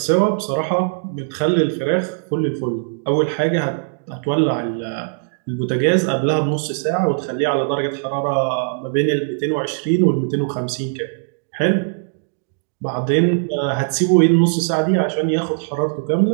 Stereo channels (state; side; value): silent; left; digital silence